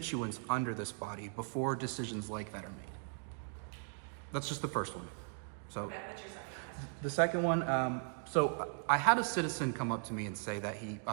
under this body before decisions like that are made? That's just the first one. So Okay, what's your second question? the second one, so I had a citizen come up to me and say that he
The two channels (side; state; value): left; silent; 52 dB below the other